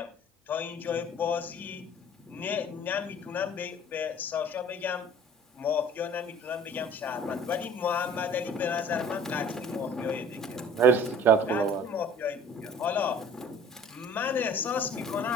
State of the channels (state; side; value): normal; both; correlation 0.48